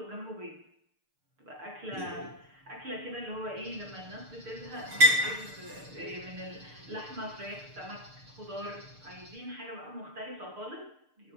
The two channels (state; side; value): late; left; 6.6 ms